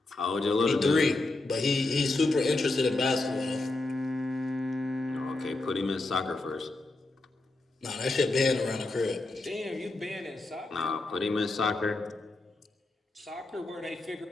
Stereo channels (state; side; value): quieter; right; 3.0 dB